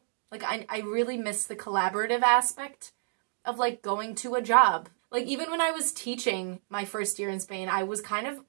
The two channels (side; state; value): left; silent; digital silence